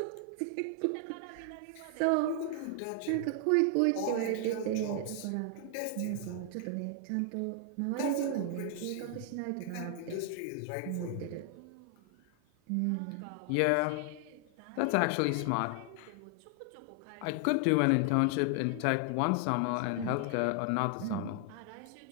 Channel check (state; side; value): different; both; correlation 0.00